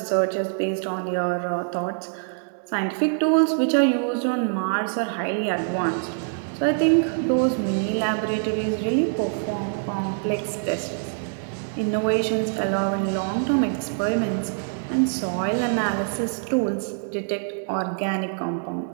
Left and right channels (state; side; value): silent; left; digital silence